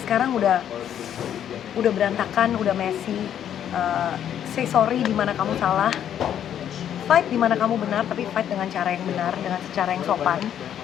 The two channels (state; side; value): quieter; right; 9.9 dB